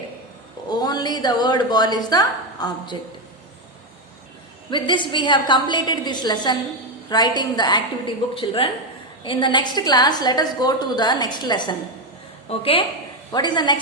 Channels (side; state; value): both; normal; correlation 0.08